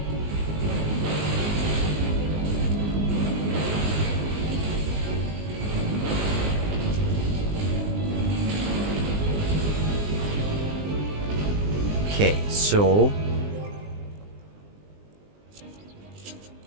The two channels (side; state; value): left; late; 20 ms